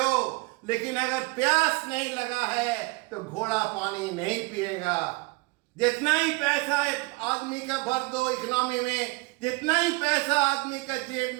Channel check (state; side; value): quieter; left; 25.9 dB